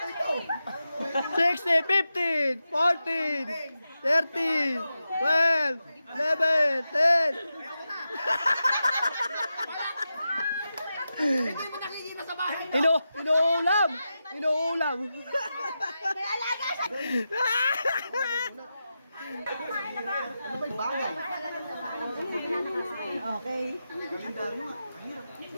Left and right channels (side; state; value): both; inverted; correlation -0.90